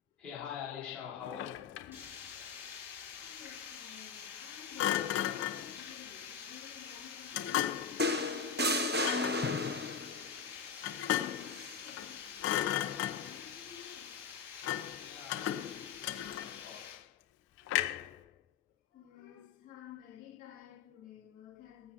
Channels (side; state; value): right; quieter; 6.5 dB